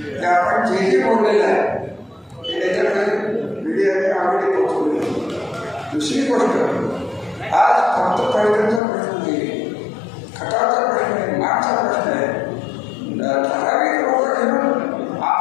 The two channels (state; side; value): drops out; right; at 8.8 s